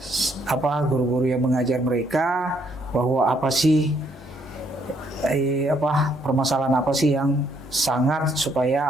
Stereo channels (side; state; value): both; normal; correlation 0.70